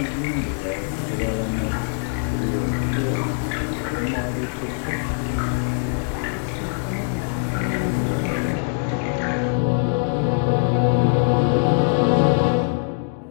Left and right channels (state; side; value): silent; right; 64 dB below the other